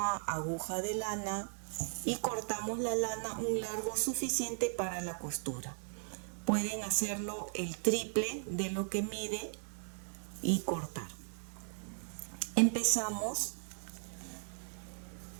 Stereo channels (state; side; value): silent; left; digital silence